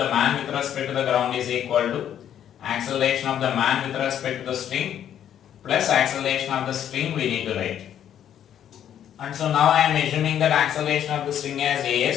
man with respect to the ground is equal to acceleration of the man with respect to the string plus acceleration of the string we need to write. And so now I am assuming that acceleration of the string as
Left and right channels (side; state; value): right; quieter; 10.1 dB